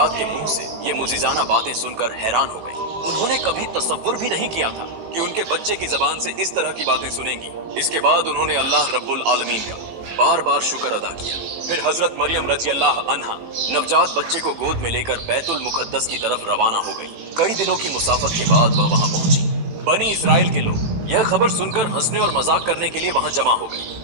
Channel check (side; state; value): left; late; 18 ms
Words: के मुंह से ये मुजिजाना बातें सुनकर हैरान हो गई। उन्होंने कभी तसव्वुर भी नहीं किया था कि उनके बच्चे की जबान से इस तरह की बातें सुनेंगी। इसके बाद उन्होंने अल्लाह रब्बुल आलमीन का बार बार शुक्र अदा किया। फिर हजरत मरियम रजी अल्लाह अन्हा नवजात बच्चे को गोद में लेकर बैतुल मुकद्दस की तरफ रवाना हो गई। कई दिनों की मुसाफत के बाद वह वहां पहुंची। बनी इसराइल के लोग यह खबर सुनकर हंसने और मजाक करने के लिए वहां जमा हो गए।